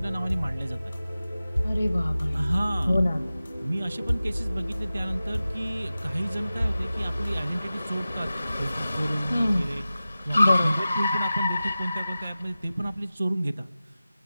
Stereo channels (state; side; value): inverted; both; correlation -0.96